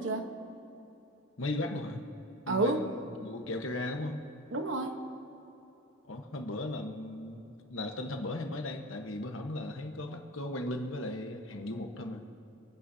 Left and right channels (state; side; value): normal; both; correlation 0.32